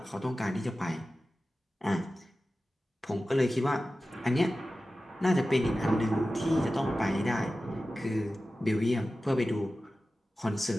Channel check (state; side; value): normal; both; correlation 0.95